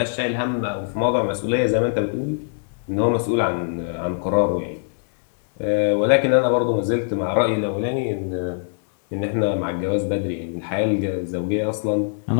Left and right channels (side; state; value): right; silent; digital silence